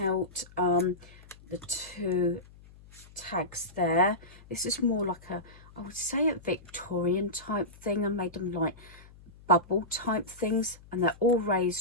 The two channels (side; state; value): left; noise; hum, 22 dB below the sound